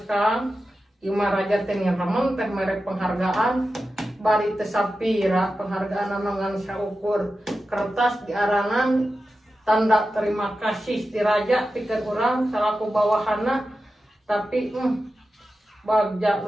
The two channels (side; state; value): both; normal; correlation 0.92